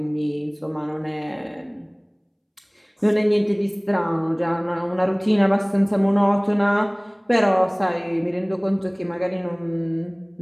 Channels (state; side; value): identical; both; correlation 1.00